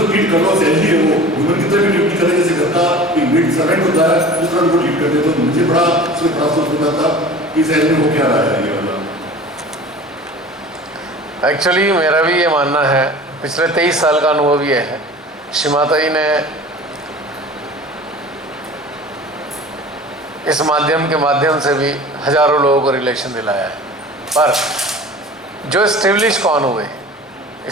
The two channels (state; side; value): normal; both; correlation 0.40